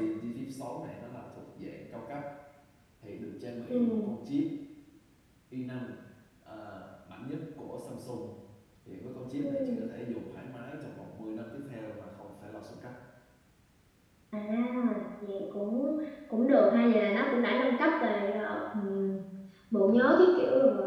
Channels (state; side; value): identical; both; correlation 1.00